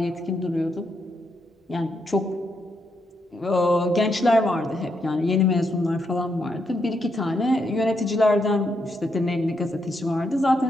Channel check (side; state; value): both; normal; correlation 0.80